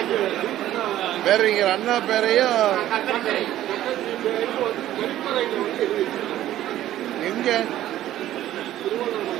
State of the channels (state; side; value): quieter; left; 13.3 dB